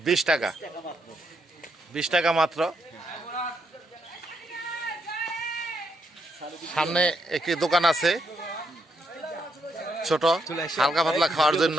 20 টাকা, 20 টাকা মাত্র। সামনে একটি দোকান আছে ছোট, হালকা পাতলা খাওয়ার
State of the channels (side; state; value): both; normal; correlation 0.78